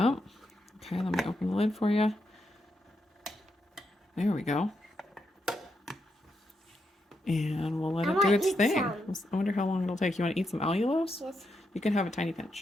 Okay, let me open the lid for you. There we go. And we'll let it do its thing. I wonder how long it'll take. You want to eat some allulose? Yes. You can have a tiny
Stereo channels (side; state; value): both; normal; correlation 0.83